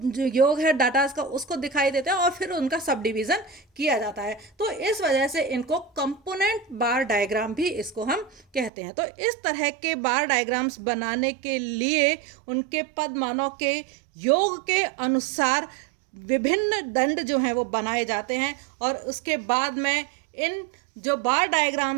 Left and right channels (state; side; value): drops out; left; at 8.7 s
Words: है डाटा का, उसको दिखाई देता है और फिर उनका सब डिवीजन किया जाता है। तो इस वजह से इनको कंपोनेंट बार डायग्राम भी इसको हम कहते हैं। तो इस तरह के बार डायग्राम्स बनाने के लिए उनके पद मानों के योग के अनुसार विभिन्न दंड जो हैं वो बनाए जाते हैं और उसके बाद में इन जो बार